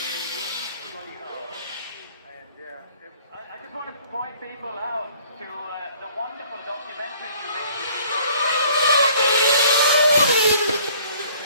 I just want to point people out to the wonderful documentary you made.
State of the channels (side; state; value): both; inverted; correlation -0.56